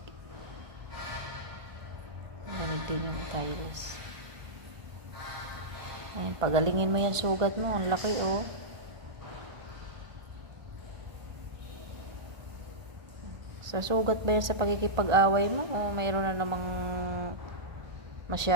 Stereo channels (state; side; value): late; left; 1.5 ms